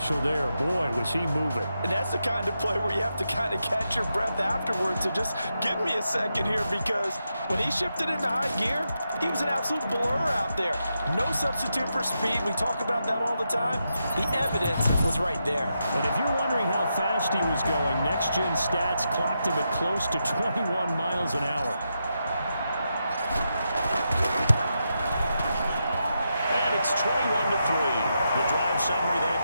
there. Boy, was he moving. And that's the kind of play where you have to kind of catch your breath afterwards. So just give me a second here, because when he shifted into high gear, he was an absolute blur out there. No substitute for speed. We talk about that all the time. The evidence was right there. And if you're wondering how fast he was going, next-gen stats clocked him at close to 21 miles an hour. It's 21-3. The drive summary that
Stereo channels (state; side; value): inverted; both; correlation -0.85